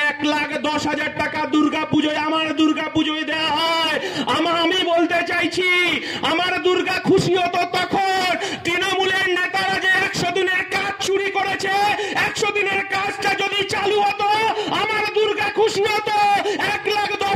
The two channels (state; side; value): identical; both; correlation 1.00